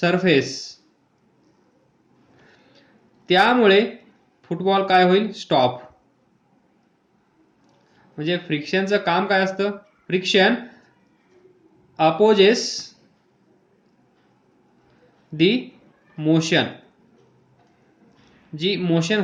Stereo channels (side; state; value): both; identical; correlation 1.00